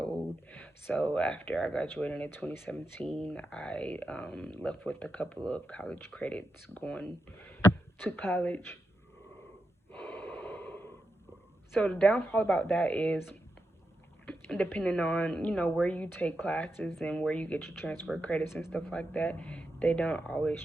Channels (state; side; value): normal; both; correlation 0.87